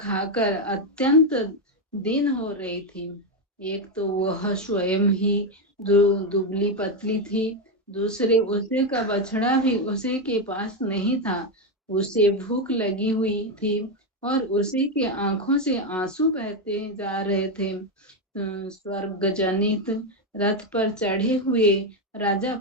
अत्यंत दीन हो रही थी। एक तो वह स्वयं ही दुबली पतली थी, दूसरे उसे का बछड़ा भी उसे के पास नहीं था। उसे भूख लगी हुई थी और उसी के आंखों से आंसू बहते जा रहे थे। स्वर्ग जनित रथ पर चढ़े हुए राजा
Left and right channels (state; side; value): normal; both; correlation 0.07